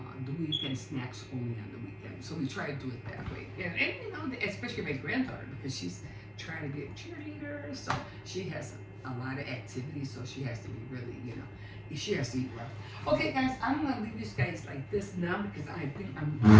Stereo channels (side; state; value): both; identical; correlation 1.00